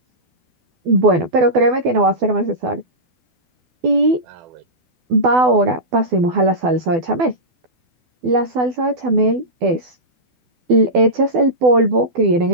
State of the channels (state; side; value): late; left; 12 ms